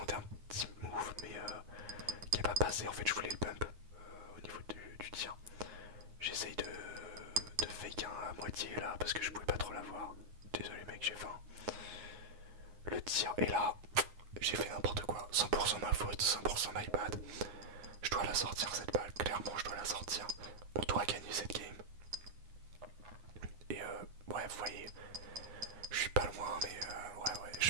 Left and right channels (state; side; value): late; left; 9.6 ms